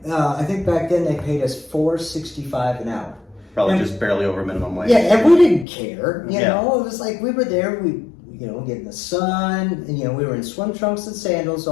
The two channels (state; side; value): drops out; right; at 5.7 s